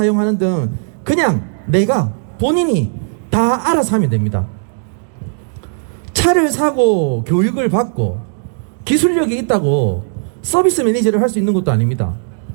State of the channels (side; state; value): left; silent; 63 dB below the other